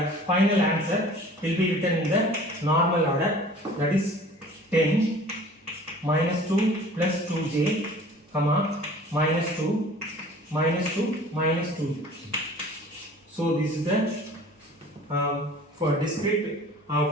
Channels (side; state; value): both; normal; correlation 0.46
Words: final answer will be written in the normal order, that is 10 minus 2 plus 2j, comma, minus 2 minus 2 minus 2. So this is the for discrete